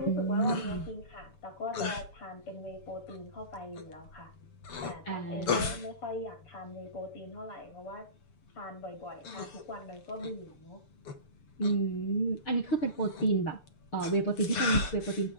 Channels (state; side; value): late; right; 6.8 ms